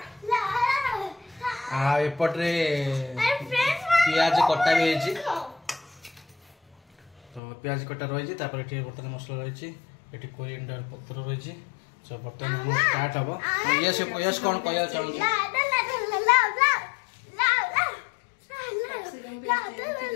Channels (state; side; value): drops out; right; at 7.4 s